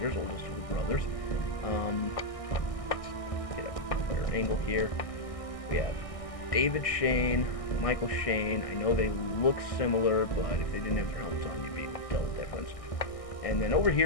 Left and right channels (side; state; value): right; late; 1.6 ms